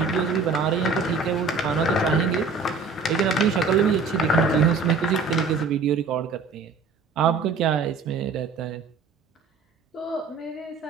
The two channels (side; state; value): left; quieter; 4.5 dB